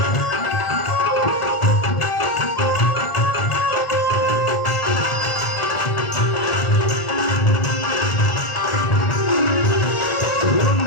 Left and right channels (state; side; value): late; right; 1.4 ms